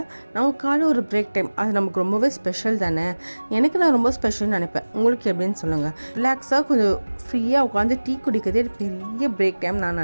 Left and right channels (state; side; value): inverted; both; correlation -1.00